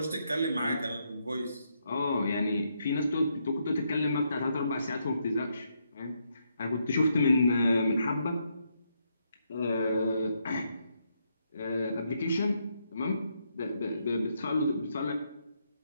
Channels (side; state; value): both; inverted; correlation -0.78